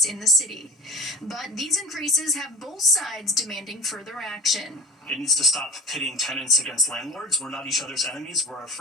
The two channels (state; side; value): normal; both; correlation 0.34